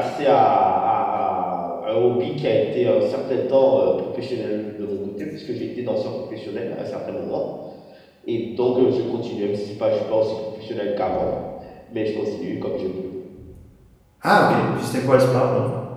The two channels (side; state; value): both; identical; correlation 1.00